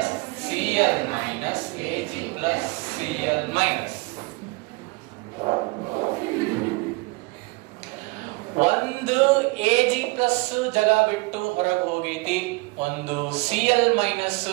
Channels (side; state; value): left; quieter; 25.3 dB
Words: Cl minus, Ag plus Cl minus. ಒಂದು Ag plus ಜಾಗ ಬಿಟ್ಟು ಹೊರಗೆ ಹೋಗೈತಿ, ಒಂದು Cl minus